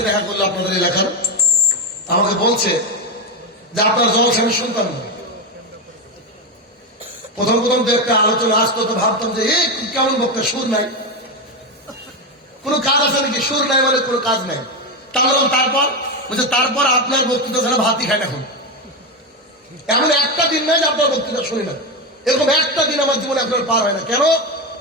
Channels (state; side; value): normal; both; correlation 0.12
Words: দেখা করলো আপনাদের এলাকার, আমাকে বলছে যে আপনার জলসা আমি শুনতাম না। প্রথম তো একটা আলোচনা আসতো, তো ভাবতাম যে এই কেমন বক্তা, সুর নাই, কোনো কাজ আছে নাকি? সুর নাই মানে কোনো কাজ নাই। তারপর বলছে তারপর আপনার বক্তৃতা ছাড়া ভাতই খায় না। এখন এমন একটা দিন নাই যে আপনার বক্তৃতা শুনি না, এরকম একটা দিন আমার জীবনে আপনার পার হয় না। কেন?